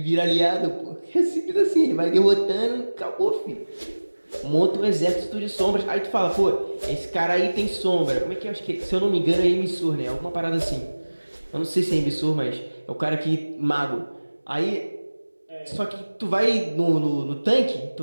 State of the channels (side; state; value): both; inverted; correlation -1.00